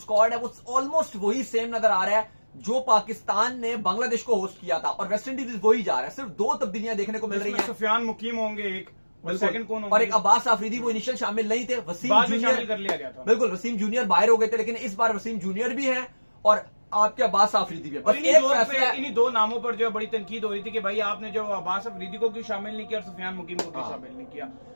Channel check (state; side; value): inverted; both; correlation -1.00